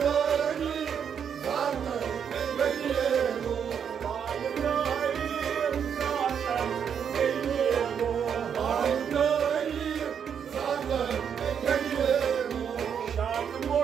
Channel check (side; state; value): left; quieter; 7.7 dB